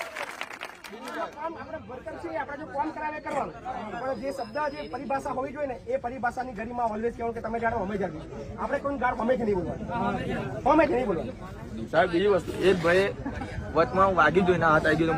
આપણે વર્કર છીએ, આપણે જો કામ કરાવે કરવાનું, પણ જે શબ્દ જે પરિભાષા હોવી જોઈએ ને એ પરિભાષાની ગરીમાં ઓલવેઝ કહેવાનું કે તમે જાણો અમે જાણો. આપણે કોઈ ગાળ હમેથી નહીં બોલવાની, હમેથી નહીં બોલવાની. સાહેબ બીજી વસ્તુ એક ભાઈ વચમાં વાગી જોઈને હાથ આવી ગયો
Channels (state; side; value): identical; both; correlation 1.00